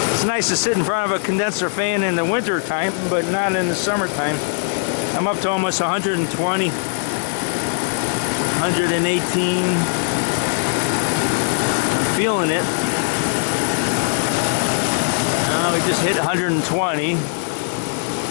It's nice to sit in front of a condenser fan in the winter time, but not in the summertime. I'm up to almost 120, 118. I'm feeling it. We just hit 120,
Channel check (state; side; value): silent; right; digital silence